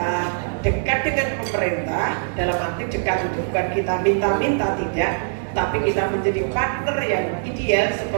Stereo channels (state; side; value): silent; left; digital silence